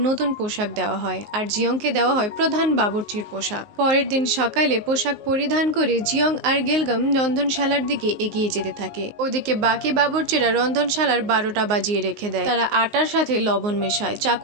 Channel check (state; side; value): late; left; 19 ms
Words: নতুন পোশাক দেওয়া হয়, আর জিয়ংকে দেওয়া হয় প্রধান বাবুর্চির পোশাক। পরের দিন সকালে পোশাক পরিধান করে জিয়ং আর গিলগাম রন্ধনশালার দিকে এগিয়ে যেতে থাকে। ওদিকে বাকি বাবুর্চিরা রন্ধনশালার 12টা বাজিয়ে রেখে দেয়। তারা আটার সাথে লবণ মেশায়,